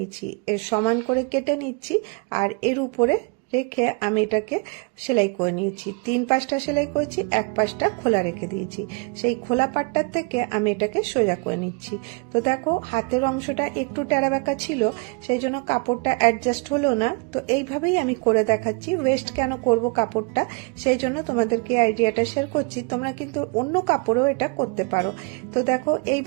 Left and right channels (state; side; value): quieter; left; 31.6 dB